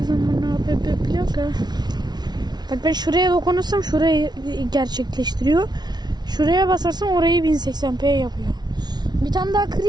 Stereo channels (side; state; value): left; late; 0.20 ms